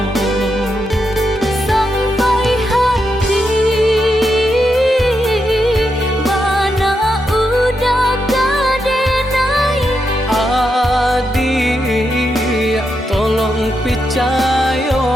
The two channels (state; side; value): normal; both; correlation 0.84